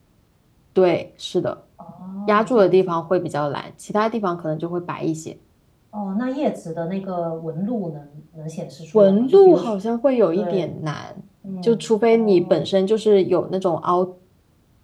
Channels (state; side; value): identical; both; correlation 1.00